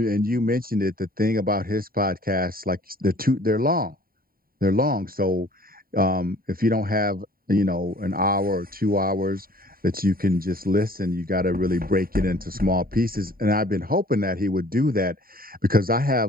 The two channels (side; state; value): left; late; 0.43 ms